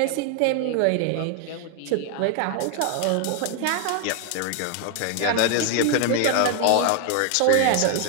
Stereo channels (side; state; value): both; different; correlation 0.00